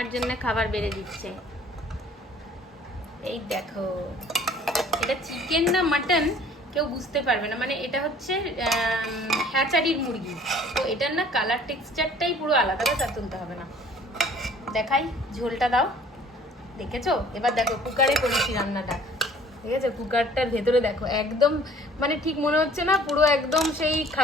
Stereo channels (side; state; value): both; normal; correlation 0.53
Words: জন্য খাবার বেড়ে দিচ্ছে। এই দেখো, এটা চিকেন না মাটন কেউ বুঝতে পারবে না, মানে এটা হচ্ছে হ্যাচারির মুরগি, তো এটার না কালার টেক্সচারটাই পুরো আলাদা, তা তুলতে হবে না। দেখাই, ঝোলটা দাও। দেখেছো? এবার দেখো কুকারে করেছি রান্নাটা, ঠিক আছে? কুকারটার ভেতরে দেখো একদম, মানে ঠিক মনে হচ্ছে না পুরো একদম সেই